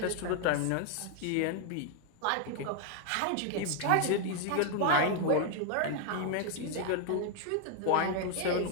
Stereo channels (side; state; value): both; different; correlation 0.00